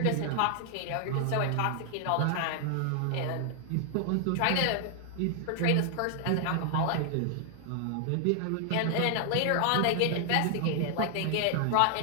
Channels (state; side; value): different; both; correlation 0.00